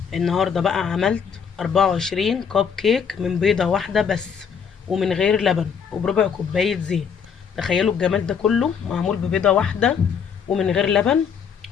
النهارده بقى عملت 24 كوب كيك من بيضة واحدة بس، ومن غير لبن، وبربع كوباية زيت. تخيلوا الجمال ده كله معمول ببيضة واحدة ومن غير لبن.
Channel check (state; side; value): quieter; right; 6.9 dB